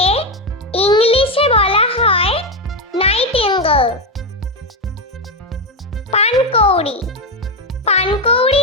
ইংলিশে বলা হয় নাইটিঙ্গেল। পানকৌড়ি,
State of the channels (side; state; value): both; normal; correlation 0.09